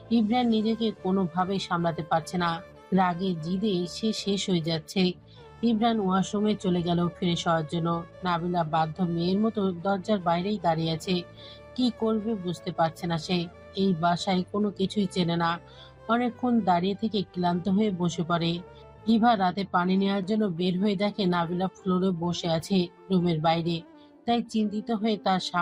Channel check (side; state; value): both; identical; correlation 1.00